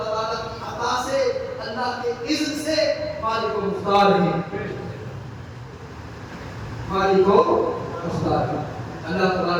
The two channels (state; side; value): identical; both; correlation 1.00